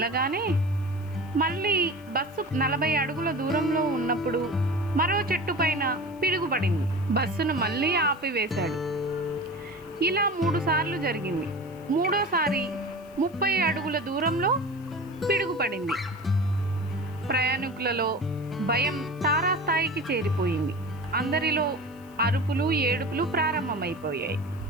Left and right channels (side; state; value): left; noise; hiss, 28 dB below the sound